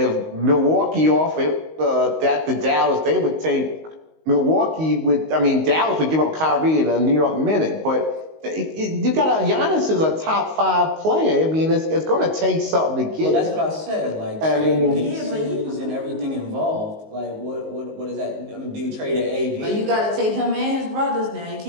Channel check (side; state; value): left; late; 19 ms